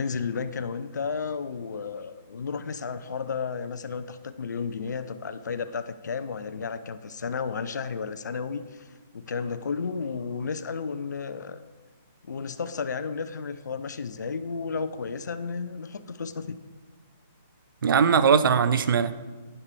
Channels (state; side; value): inverted; both; correlation -0.49